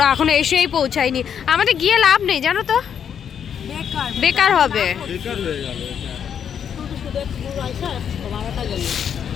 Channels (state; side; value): quieter; right; 8.2 dB